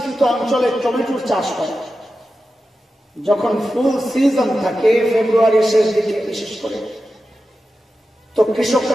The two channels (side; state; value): both; normal; correlation 0.92